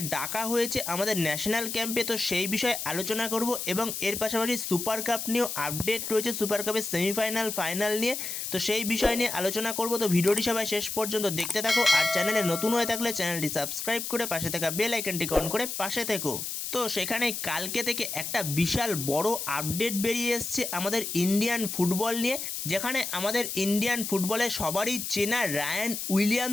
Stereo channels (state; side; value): noise; left; hiss, 5 dB below the sound